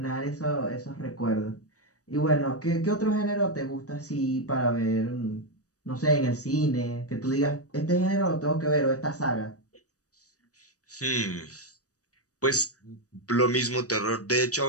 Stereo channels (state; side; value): late; right; 0.66 ms